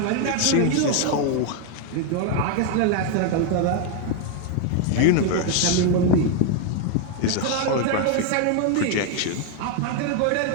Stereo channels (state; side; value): different; both; correlation 0.01